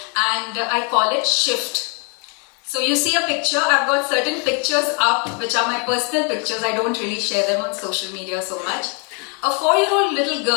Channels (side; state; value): right; quieter; 36.5 dB